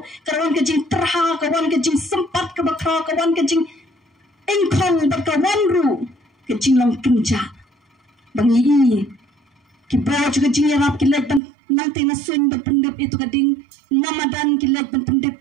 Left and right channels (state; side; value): drops out; left; at 11.4 s